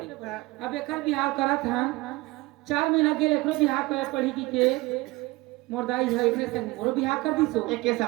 अब एकर बिहाव करत हन 4 महीना के एकरो बिहाव कर पढ़ी की के मोरदाई है एकरे संग मोरो बिहाव कर दिसो एक के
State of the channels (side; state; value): left; quieter; 21.7 dB